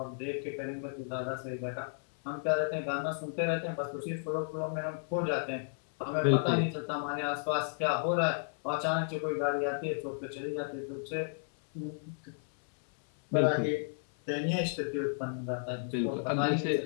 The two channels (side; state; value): right; silent; 56 dB below the other